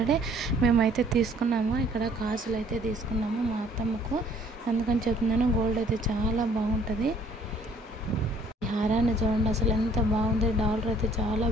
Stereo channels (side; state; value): both; normal; correlation 0.59